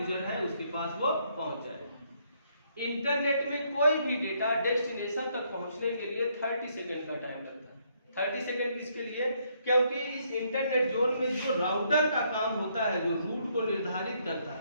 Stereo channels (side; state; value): both; inverted; correlation -0.71